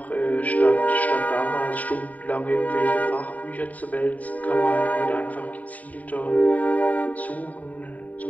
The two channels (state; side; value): late; right; 0.072 ms